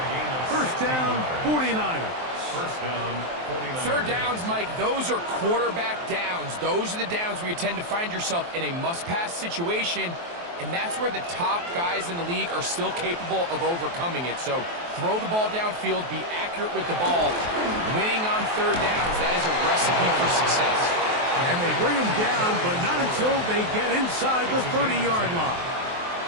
1st down, 49ers. 1st down, 49ers. 3rd downs, Mike, those are quarterback downs. Those are the downs where you tend to find yourself in a must-pass situation, and that's where the top guys in the league are still capable of overcoming it. So throw the ball downfield, be accurate with the ball. Winning on 3rd downs, that is a recipe for success. And they bring him down, but not until they get inside the 30-yard line.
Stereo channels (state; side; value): late; left; 23 ms